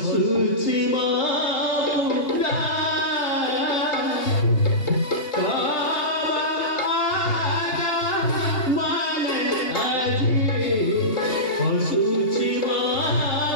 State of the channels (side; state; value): right; late; 3.3 ms